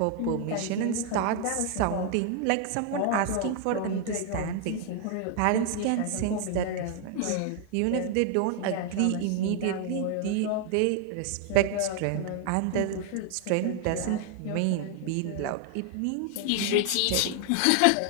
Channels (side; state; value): both; different; correlation 0.00